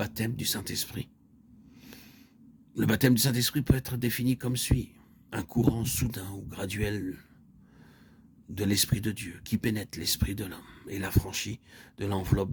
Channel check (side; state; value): both; identical; correlation 1.00